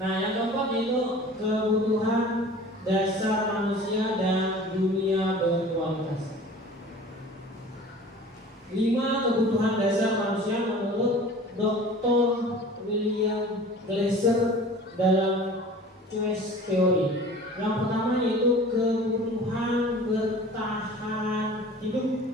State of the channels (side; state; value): both; normal; correlation 0.43